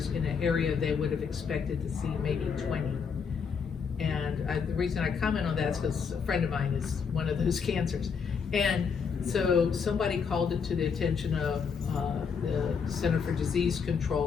in an area they would have expected to see maybe 20. And the reason I comment on that is because a friend of mine is one of those cancers. And so somebody called it to the attention of the Center for Disease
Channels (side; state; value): right; quieter; 6.1 dB